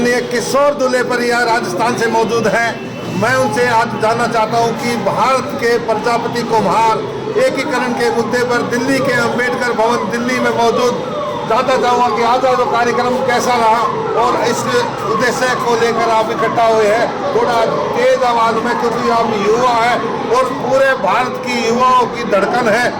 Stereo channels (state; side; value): identical; both; correlation 1.00